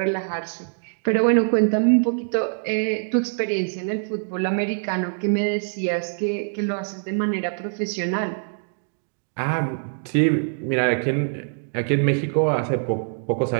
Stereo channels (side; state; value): left; silent; digital silence